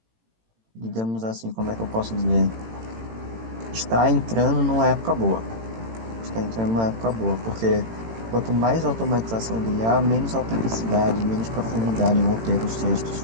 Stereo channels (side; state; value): left; late; 18 ms